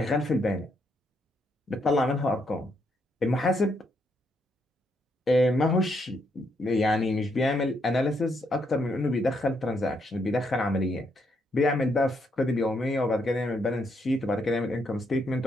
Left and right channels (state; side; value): normal; both; correlation 0.76